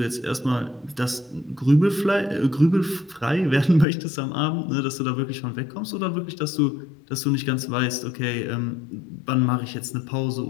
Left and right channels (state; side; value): drops out; right; at 3.9 s